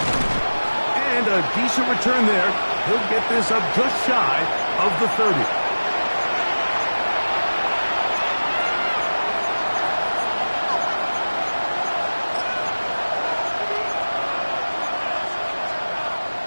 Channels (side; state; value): both; inverted; correlation -1.00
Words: And a decent return there. He'll get this up just shy of the 30.